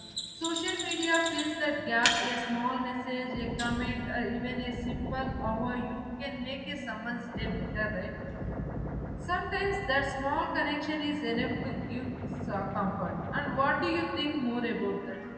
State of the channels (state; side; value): identical; both; correlation 1.00